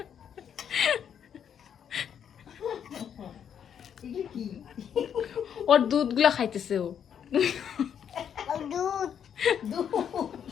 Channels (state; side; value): quieter; right; 8.4 dB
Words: ওর দুধগুলো খাইতেছে ও।